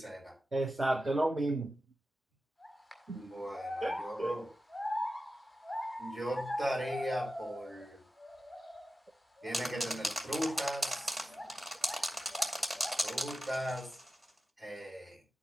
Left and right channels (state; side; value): normal; both; correlation 0.92